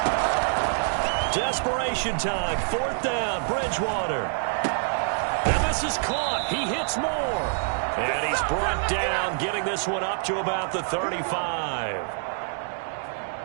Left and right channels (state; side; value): silent; left; digital silence